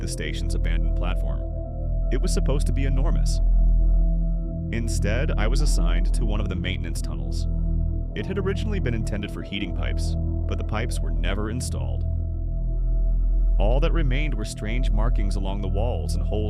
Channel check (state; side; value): identical; both; correlation 1.00